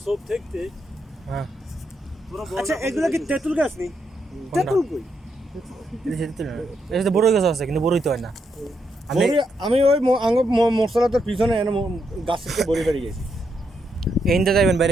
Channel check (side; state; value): both; normal; correlation 0.80